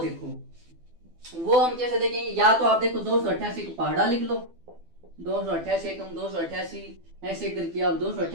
वो हम कैसे देखेंगे, या तो आप देखो 288 का पहाड़ा लिख लो, 288 एकम 288, ऐसे करके आप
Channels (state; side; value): late; left; 12 ms